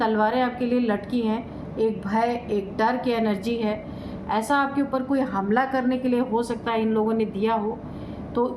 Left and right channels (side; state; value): both; identical; correlation 1.00